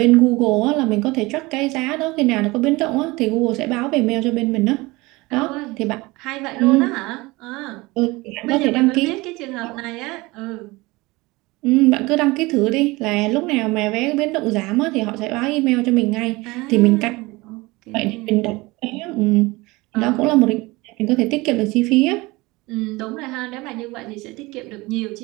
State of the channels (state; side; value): quieter; left; 22.3 dB